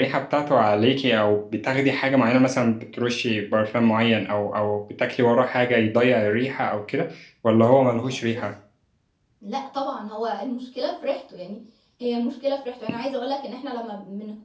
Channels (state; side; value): identical; both; correlation 1.00